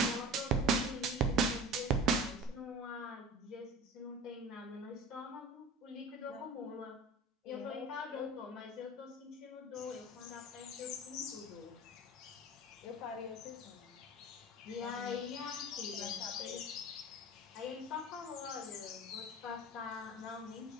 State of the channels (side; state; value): both; normal; correlation 0.37